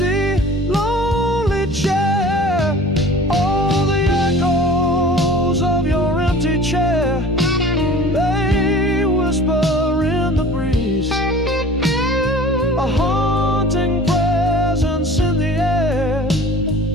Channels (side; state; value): both; normal; correlation 0.43